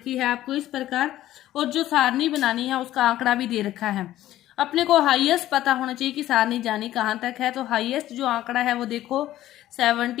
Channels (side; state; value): right; quieter; 14.0 dB